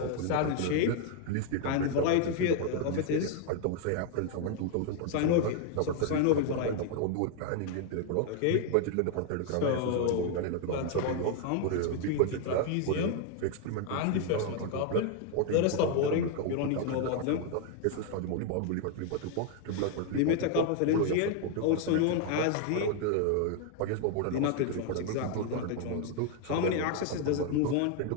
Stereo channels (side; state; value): both; different; correlation 0.00